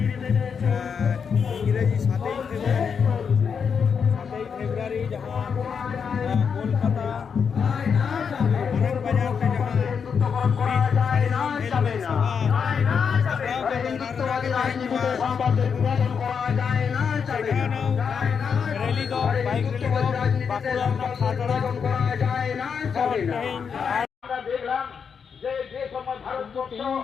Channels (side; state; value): right; quieter; 6.5 dB